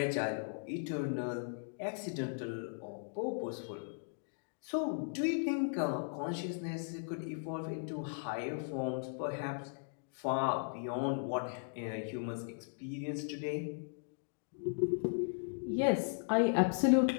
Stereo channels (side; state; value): right; silent; digital silence